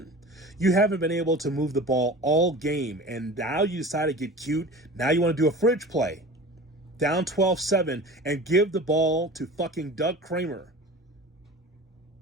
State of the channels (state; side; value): normal; both; correlation 0.37